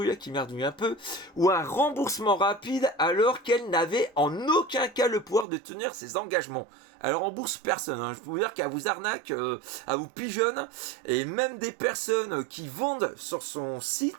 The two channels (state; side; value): drops out; left; at 5.5 s